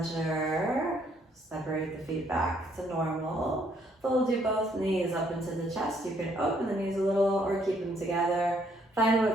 Separate the feet back to normal. Fold your both knees up into the chest. You can open the knees a little or keep them together. Find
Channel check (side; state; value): both; normal; correlation 0.68